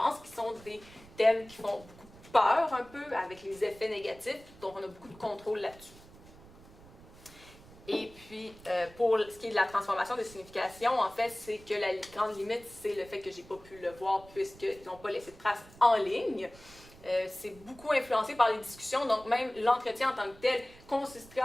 qui sont des thèmes qui font beaucoup peur un peu, avec les effets négatifs, donc on a beaucoup de contrôle là-dessus. Et puis, pour ce qui est de la transformation de signification, en fait, c'est que la grande limite, c'est le fait que j'ai pas pu le voir puisqu'ils n'ont pas laissé de traces en ligne. C'est beaucoup influencé par les discussions, donc même l'entretien en tant que tel consisterait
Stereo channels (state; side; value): noise; right; rumble, 21 dB below the sound